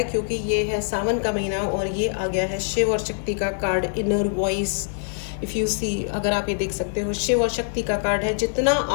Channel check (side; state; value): right; silent; 63 dB below the other